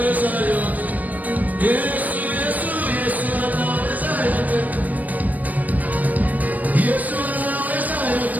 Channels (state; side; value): late; left; 0.078 ms